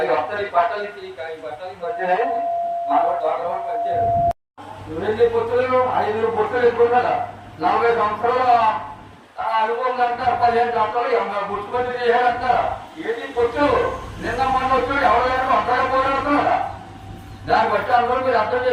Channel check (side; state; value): both; identical; correlation 1.00